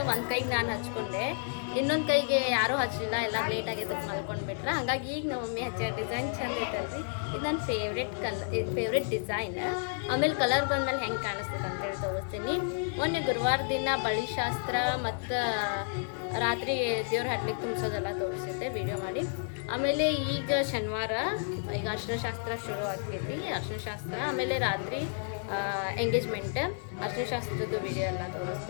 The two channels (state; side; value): silent; right; 57 dB below the other